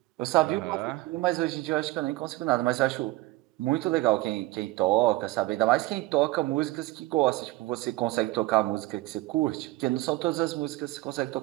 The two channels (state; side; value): quieter; left; 19.4 dB